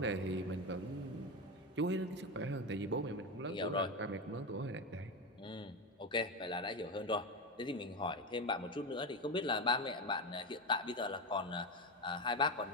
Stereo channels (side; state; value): both; normal; correlation 0.16